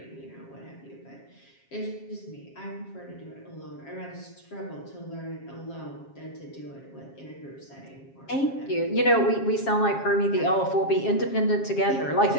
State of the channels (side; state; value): right; late; 7.4 ms